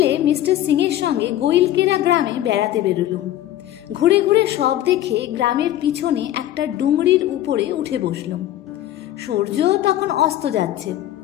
মিস্টার সিং এর সঙ্গে গোইলকেরা গ্রামে বেড়াতে বেরোলুম। ঘুরে ঘুরে সব দেখে গ্রামের পিছনে একটা ডুংরির উপরে উঠে বসলুম। সূর্য তখন অস্ত যাচ্ছে।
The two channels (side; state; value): right; quieter; 13.1 dB